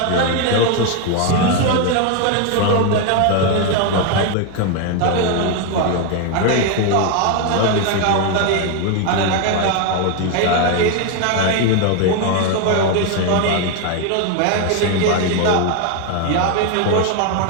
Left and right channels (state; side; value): different; both; correlation 0.01